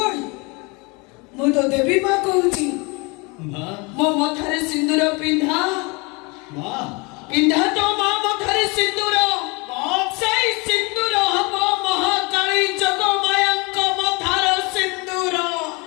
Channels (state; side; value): quieter; right; 28.3 dB